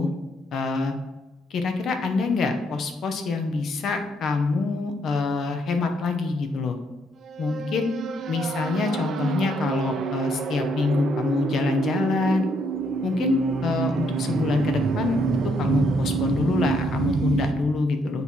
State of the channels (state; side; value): normal; both; correlation 0.72